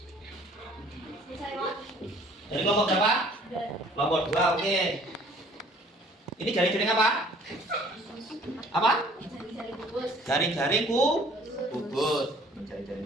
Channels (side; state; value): both; normal; correlation 0.55